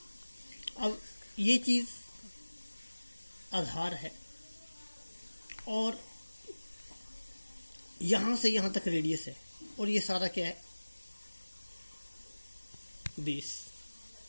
अब ये चीज आधार है और यहां से यहां तक रेडियस है, और ये सारा क्या है, बेस।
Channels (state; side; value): inverted; both; correlation -1.00